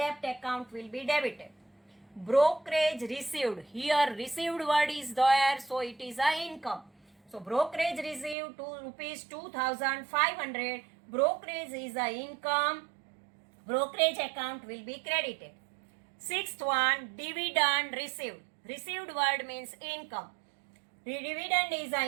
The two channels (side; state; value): left; drops out; at 8.3 s